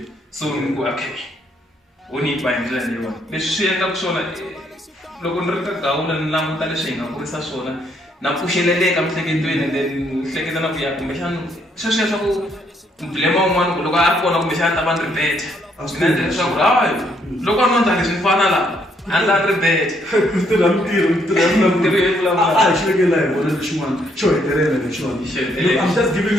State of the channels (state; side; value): normal; both; correlation 0.71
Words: so ni ku okay wo ni ba hi ndlela leyiwani leswi swi endlaka swona loko ni ri ka Gawula ni languta leswi hi nga kurisa swona na pfuxeleleka miehleketweni then hleketa na ku ya kumbexana sweswiya swa ku blema un'wana loko a ri kona kumbexana ta va ni ri beta mina endla leswaku hayi loko a no endla leswi ni fana laha a ni la ri beta ku tirha mintirho a hi xivekela hi vona lexin'wana xo hetelela lexiwani I'm just giving